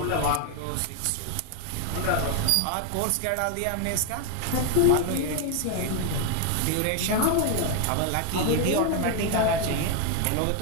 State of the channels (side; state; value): both; different; correlation 0.01